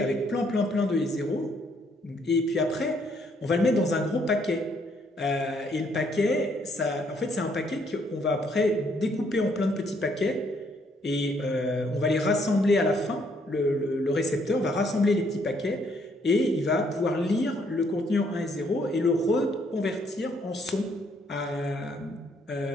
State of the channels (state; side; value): normal; both; correlation 0.69